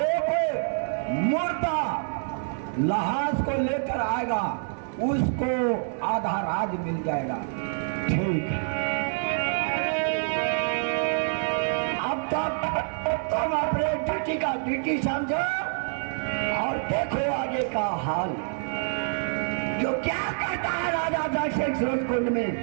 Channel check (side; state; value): left; silent; digital silence